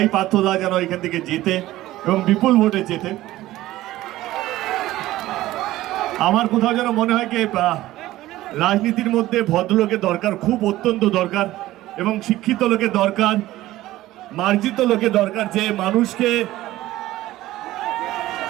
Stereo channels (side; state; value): left; quieter; 15.9 dB